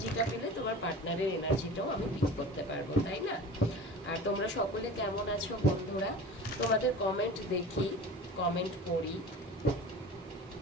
পেলে তোমার পার্টনারের এনার্জিটাও আমি পিক করতে পারবো, তাই না? আর তোমরা সকলে কেমন আছো বন্ধুরা? তোমাদের কমেন্ট দেখি, কমেন্ট পড়ি।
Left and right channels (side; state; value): both; normal; correlation 0.36